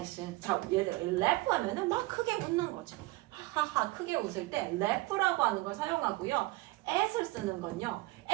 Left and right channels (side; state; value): left; quieter; 21.1 dB